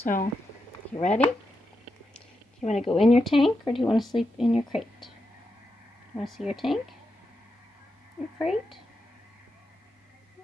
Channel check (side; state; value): both; normal; correlation 0.86